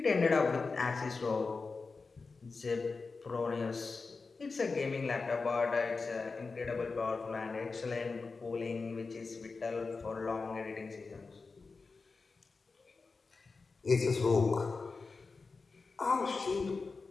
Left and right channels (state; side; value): quieter; right; 4.2 dB